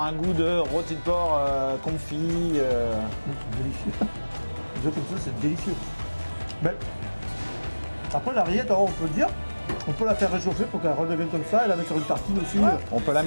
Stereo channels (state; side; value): inverted; both; correlation -1.00